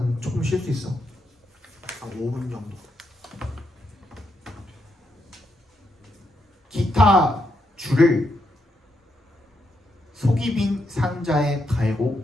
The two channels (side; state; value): both; normal; correlation 0.80